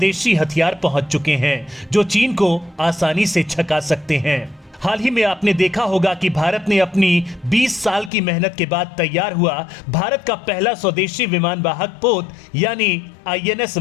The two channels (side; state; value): right; drops out; at 8.1 s